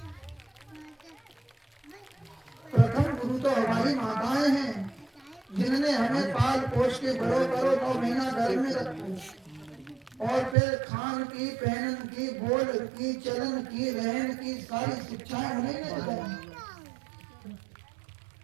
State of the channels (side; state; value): left; drops out; at 10.6 s